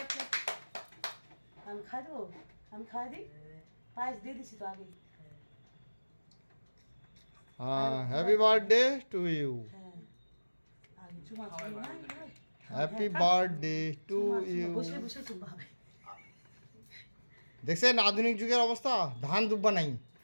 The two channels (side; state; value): both; inverted; correlation -1.00